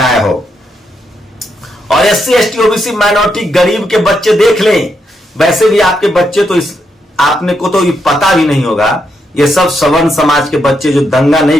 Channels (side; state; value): both; normal; correlation 0.80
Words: हो। और SC ST ओबीसी माइनॉरिटी गरीब के बच्चे देख लें। वैसे भी आपके बच्चे तो आपने को तो ये पता भी नहीं होगा, ये सब सवर्ण समाज के बच्चे जो दंगा